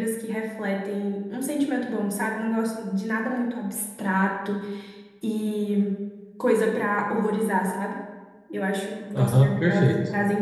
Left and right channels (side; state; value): both; identical; correlation 1.00